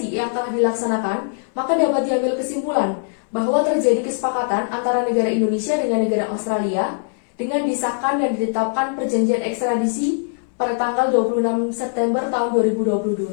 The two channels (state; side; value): silent; right; 65 dB below the other